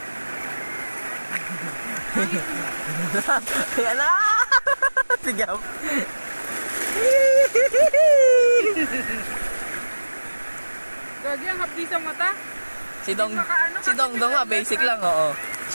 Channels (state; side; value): inverted; both; correlation -1.00